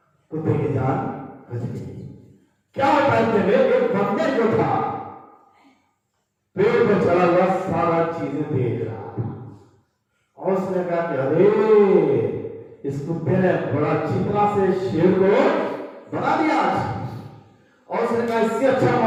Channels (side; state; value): both; identical; correlation 1.00